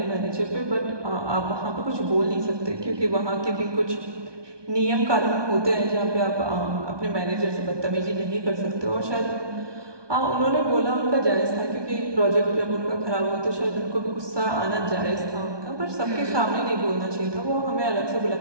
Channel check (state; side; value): late; left; 1.2 ms